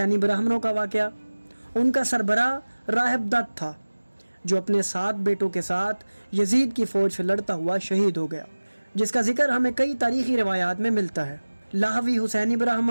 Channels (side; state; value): both; inverted; correlation -1.00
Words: ब्राह्मणों का वाक़या। उनका सरबराह राहिब दत्त था जो अपने 7 बेटों के साथ यजीद की फ़ौज से लड़ता हुआ शहीद हो गया, जिसका जिक्र हमें कई तारीख़ी रिवायात में मिलता है। लाहवी हुसैनी